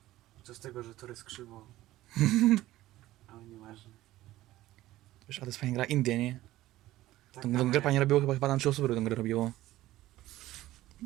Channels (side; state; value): left; quieter; 15.8 dB